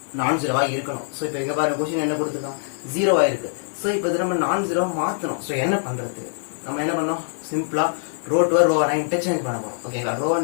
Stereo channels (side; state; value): right; silent; digital silence